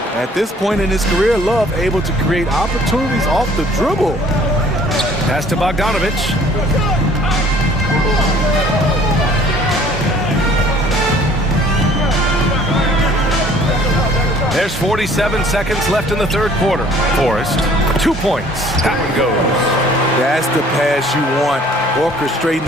At this point in his career, Love able to create opportunities off the dribble. Pass to Bogdanovich. There's 47 seconds left in the third quarter. Forrest, 2 points. That one goes. That's the pass you want. Orchestrating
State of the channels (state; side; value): normal; both; correlation 0.55